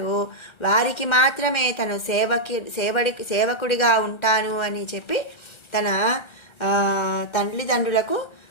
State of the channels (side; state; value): right; late; 1.3 ms